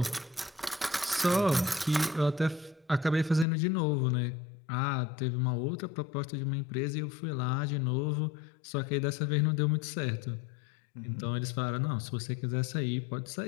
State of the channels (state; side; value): drops out; right; at 3.5 s